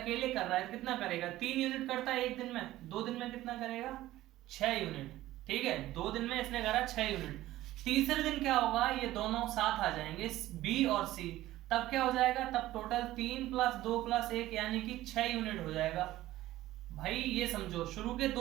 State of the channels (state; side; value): quieter; left; 15.6 dB